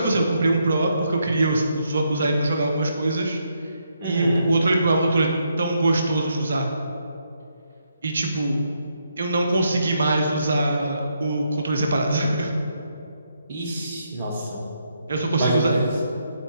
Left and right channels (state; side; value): inverted; both; correlation -0.78